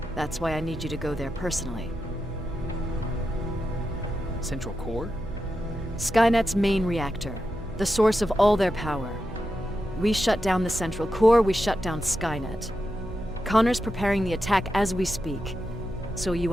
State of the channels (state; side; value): noise; right; hum, 14 dB below the sound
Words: That's why I need you to go there personally. Central core? Skynet's main reactor, the source of all their power. We shut down the central core, we shut down Skynet. Connor's preparing the attack as we speak, so you